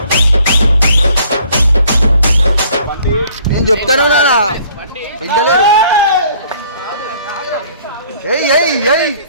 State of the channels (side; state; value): both; inverted; correlation -0.58